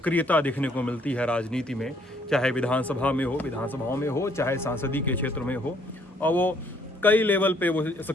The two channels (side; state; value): both; normal; correlation 0.65